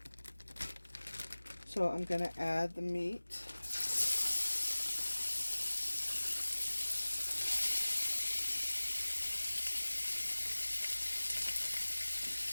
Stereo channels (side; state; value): both; inverted; correlation -1.00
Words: So I'm going to add the meat.